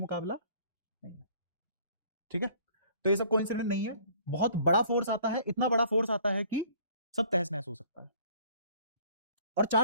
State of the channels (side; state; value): both; inverted; correlation -0.55